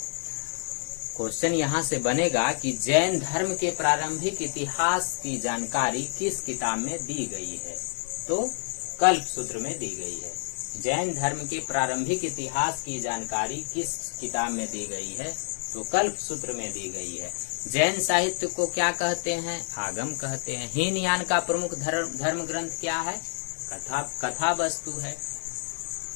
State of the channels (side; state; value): right; silent; digital silence